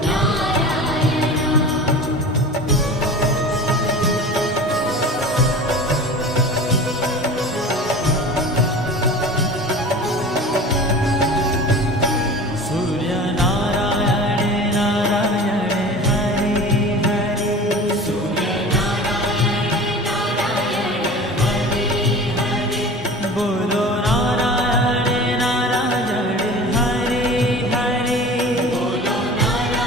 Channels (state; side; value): normal; both; correlation 0.37